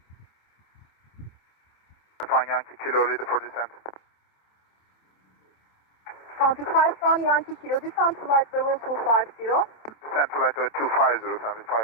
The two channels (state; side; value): late; right; 27 ms